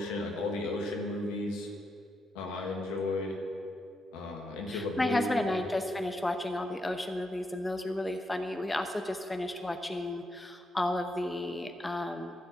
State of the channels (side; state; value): both; normal; correlation 0.82